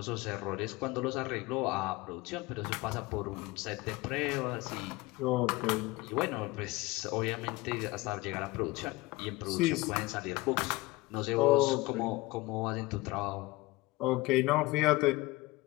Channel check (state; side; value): quieter; right; 21.4 dB